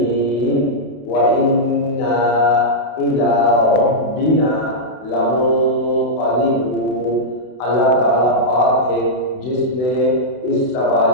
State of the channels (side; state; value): right; late; 32 ms